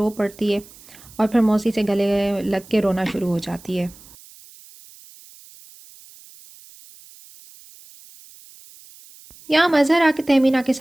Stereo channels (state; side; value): noise; right; hiss, 23 dB below the sound